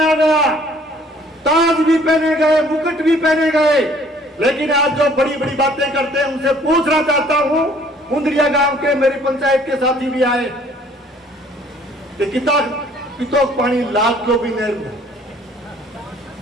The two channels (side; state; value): both; normal; correlation 0.57